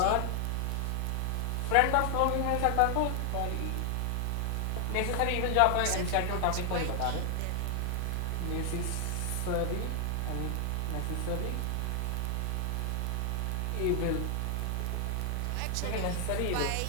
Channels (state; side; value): different; both; correlation 0.00